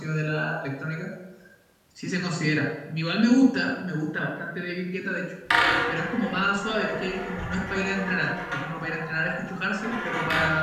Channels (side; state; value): both; identical; correlation 1.00